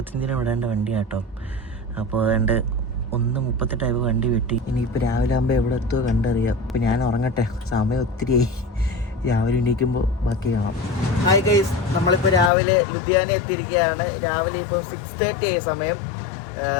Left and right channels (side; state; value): right; drops out; at 12.5 s